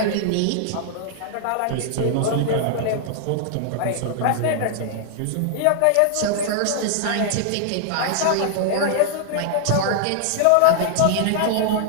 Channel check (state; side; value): different; both; correlation -0.01